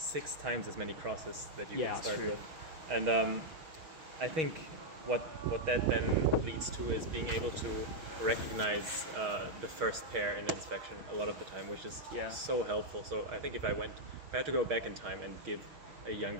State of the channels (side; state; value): left; late; 6.3 ms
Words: times as many crosses that you can start with. And I think what that then leads to is being able to recognize the first pair in inspection a lot of the time, which is so helpful. So I think if I had to go back in time and give a